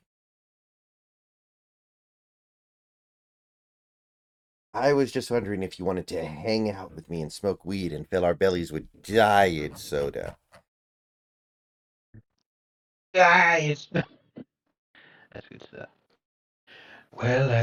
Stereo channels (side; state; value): both; identical; correlation 1.00